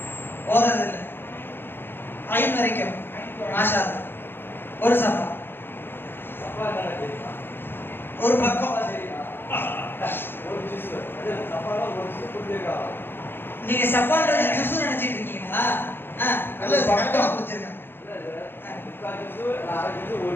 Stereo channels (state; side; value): late; right; 0.10 ms